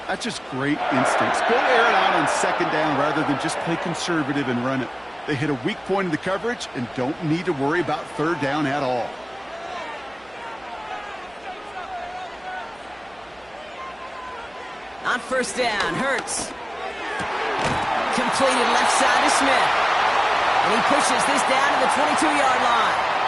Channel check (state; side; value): noise; right; hum, 30 dB below the sound